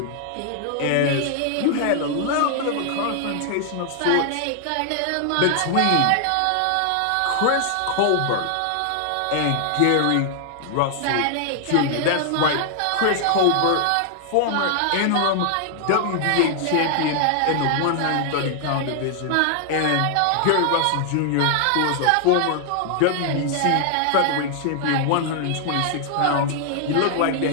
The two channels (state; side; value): different; both; correlation 0.00